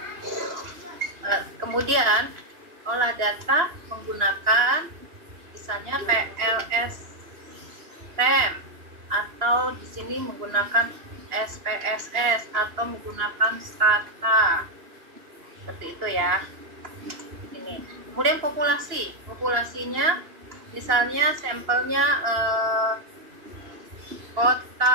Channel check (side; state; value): left; late; 2.9 ms